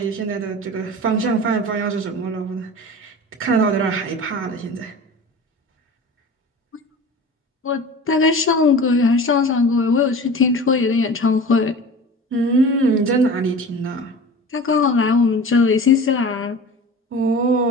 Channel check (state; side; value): normal; both; correlation 0.37